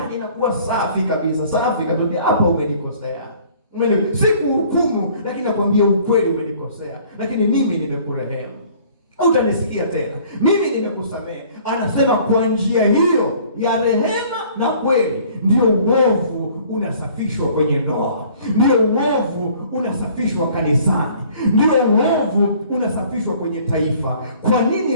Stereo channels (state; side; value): inverted; both; correlation -0.54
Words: inakuwa safi kabisa. Hapa umenikosea. Sikuhukumu, lakini nakwambia ukweli, umenikosea, lakini mimi nimekurehemu. Utanisikia tena. Mimi nimekusamehe. Anasema kwa njia hiyo ya rehema na kweli ndio uovu unasafishwa kwenye ndoa, ndio uovu unasafishwa kanisani, ndio uovu unasafishwa kwenye taifa. Kwa nini